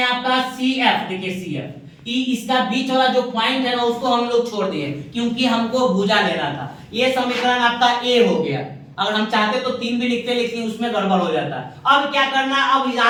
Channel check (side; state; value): both; identical; correlation 1.00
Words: आपका CF। देखिए CF, इसका बीच वाला जो पॉइंट है ना, उसको हम लोग छोड़ दिए, क्योंकि हमको भुजा लेना था। ये समीकरण आपका A हो गया। अगर हम चाहते तो 3 भी लिखते, लेकिन उसमें गड़बड़ हो जाता है। अब क्या करना, अब